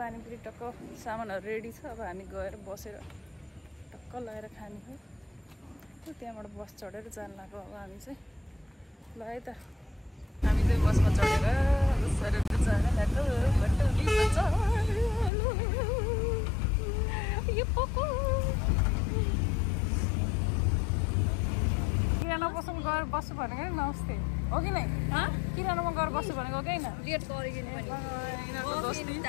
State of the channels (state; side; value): drops out; right; at 15.3 s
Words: पानीपुरी टक्क सामानहरू रेडी छ। अब हामी गएर बसेर टक्क लगाएर खाने हो। त्यहाँबाट बस चढेर जान लाग्यो। अब हामी चाहिँ ल है त हामी चाहिँ बसमा चढेर सरेर जान लाग्यो। किराना पसलमा गएर बस्छु भनेको नि नमस्ते हो कि नै? किरानामा गएर बस्छु भनेको कि होइन? लेट गरिदिनु